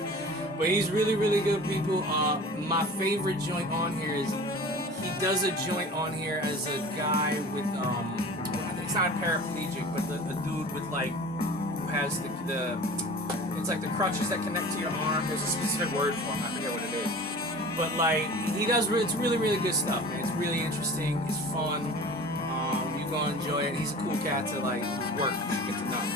But he's really, really good, people. My favorite joint on here is he does a joint on here as a guy with I think it's not paraplegic, but the dude with like who has the it's like the crutches that connect to your arm. There's a specific word for him. I forget what it is. But like he does, it's really, really good stuff, man. It's really interesting. It's fun. You're gonna enjoy it. He's a cool cat to like work. You should get to know.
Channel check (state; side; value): normal; both; correlation 0.39